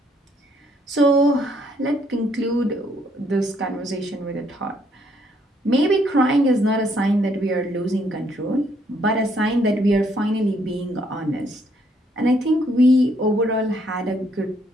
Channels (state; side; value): normal; both; correlation 0.69